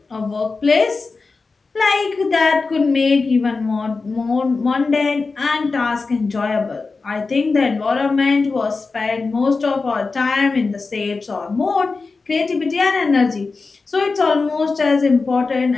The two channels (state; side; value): quieter; right; 4.1 dB